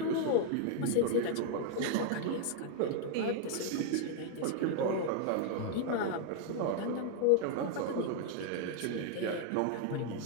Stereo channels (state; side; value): different; both; correlation 0.00